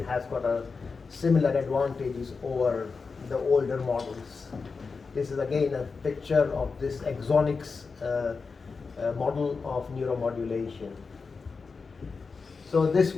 has got a similar advantages over the older models. This is again a picture of this Exonics model of neuromodulation. So this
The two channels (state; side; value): quieter; right; 4.7 dB